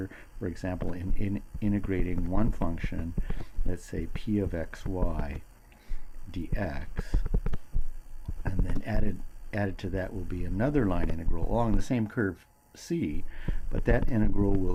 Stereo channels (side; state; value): both; identical; correlation 1.00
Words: for example, in integrating one function, let's say p of xy dx, and then added to that will be another line integral along the same curve C, but that integral